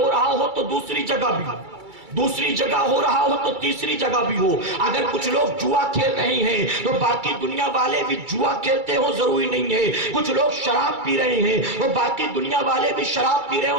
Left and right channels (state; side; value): late; left; 2.3 ms